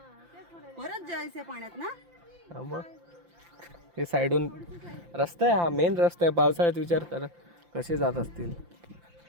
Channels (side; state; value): left; late; 5.8 ms